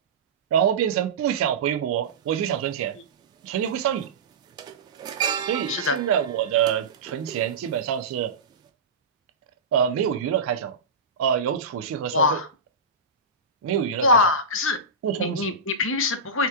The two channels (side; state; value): left; quieter; 3.4 dB